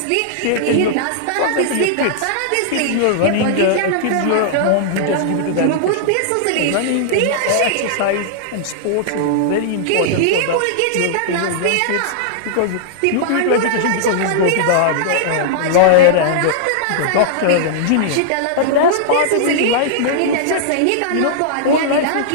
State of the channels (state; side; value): different; both; correlation -0.01